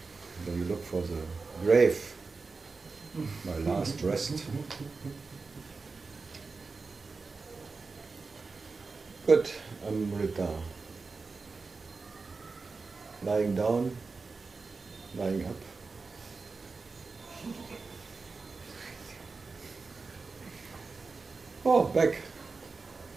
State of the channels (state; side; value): quieter; left; 4.2 dB